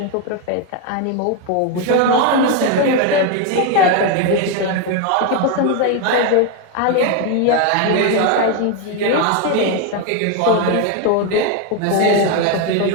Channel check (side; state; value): both; different; correlation 0.02